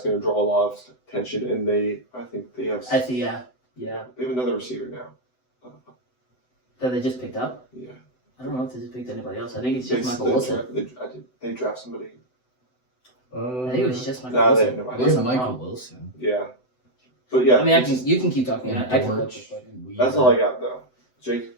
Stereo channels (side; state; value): right; late; 7.9 ms